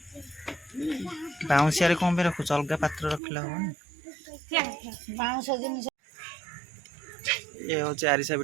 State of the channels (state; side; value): drops out; left; at 3.2 s